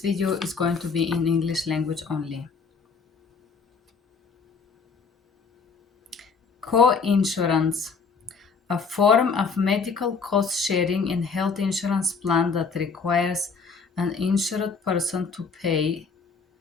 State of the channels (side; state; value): right; quieter; 5.1 dB